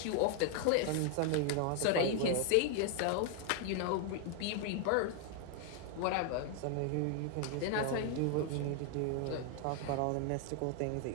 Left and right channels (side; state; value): both; different; correlation 0.00